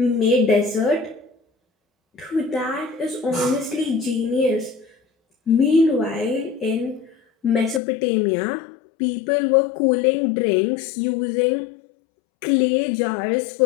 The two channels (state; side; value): drops out; right; at 7.8 s